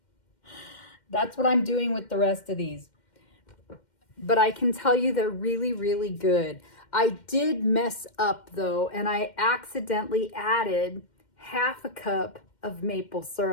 That's what I'm doing with the rest of these. But I can tell you they're really, really good. I did mess up though, and I accidentally added 1/2 cup of maple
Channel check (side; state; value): right; late; 2.1 ms